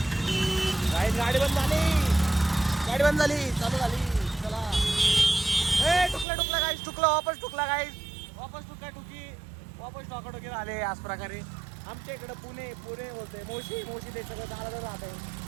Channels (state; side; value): drops out; left; at 6.2 s